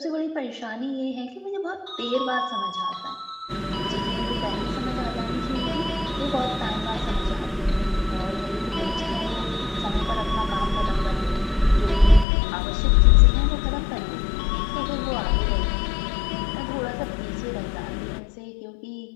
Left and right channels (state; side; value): drops out; right; at 12.2 s